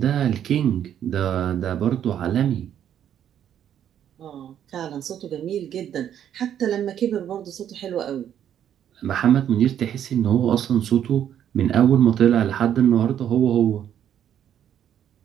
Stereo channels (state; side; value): quieter; left; 9.9 dB